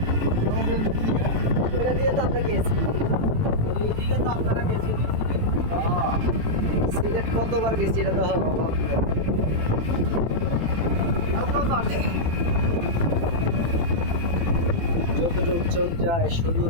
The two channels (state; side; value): late; left; 18 ms